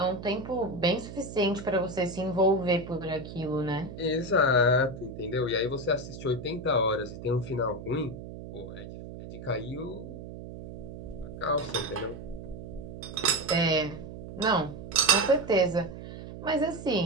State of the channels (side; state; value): right; noise; hum, 11 dB below the sound